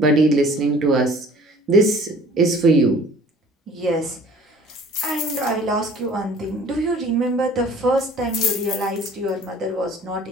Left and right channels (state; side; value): normal; both; correlation 0.51